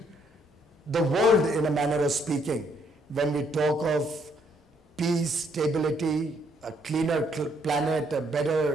the world in a manner of speaking when we talk of peace, stability, a cleaner planet, a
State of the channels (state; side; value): normal; both; correlation 0.70